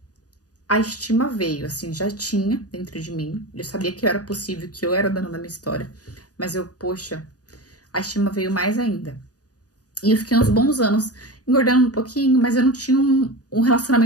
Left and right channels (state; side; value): late; right; 0.68 ms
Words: a estima veio, assim, já tinha dentro de mim. Eu sabia que era possível, que eu era dona da minha história. Mas eu, poxa, a estima veio mais ainda. E eu fiquei uns bons anos engordando um pouquinho, mas eu não tinha um